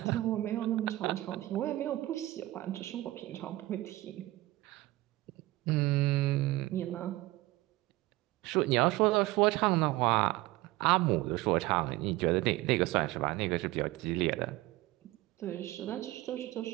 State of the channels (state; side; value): quieter; left; 18.3 dB